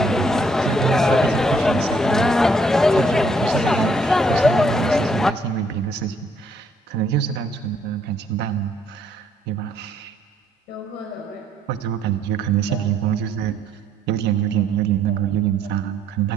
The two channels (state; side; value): normal; both; correlation 0.68